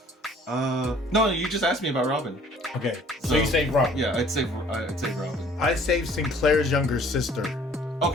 No, you just asked me about Robin. Okay, so you saved Robin. Yeah, I'd save Robin. I saved Sinclair's younger sister.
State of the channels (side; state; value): both; normal; correlation 0.54